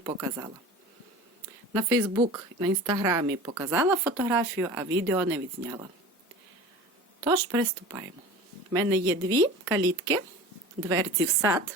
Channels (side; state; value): both; normal; correlation 0.37